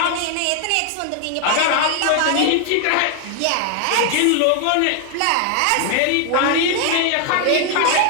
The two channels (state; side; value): different; both; correlation 0.00